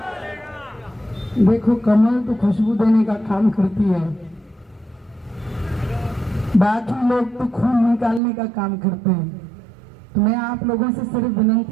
देखो, कमल तो खुशबू देने का काम करती है, बाकी लोग तो खून निकालने का काम करते हैं। तो मैं आप लोगों से सिर्फ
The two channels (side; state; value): left; drops out; at 8.2 s